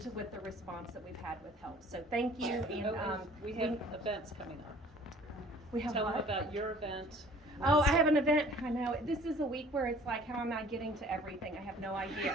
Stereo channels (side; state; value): both; normal; correlation 0.51